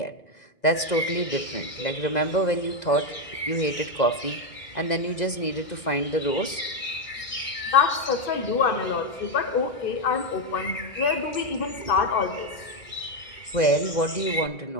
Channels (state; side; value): late; right; 2.0 ms